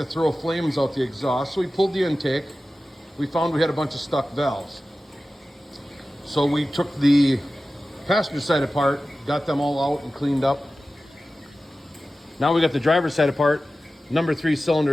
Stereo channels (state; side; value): normal; both; correlation 0.95